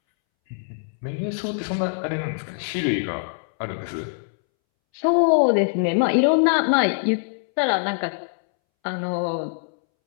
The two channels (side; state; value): right; silent; 63 dB below the other